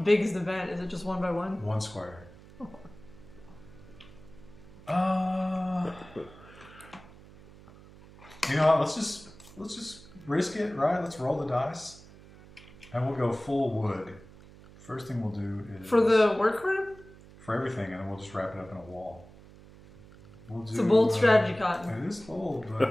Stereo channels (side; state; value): right; noise; hum, 21 dB below the sound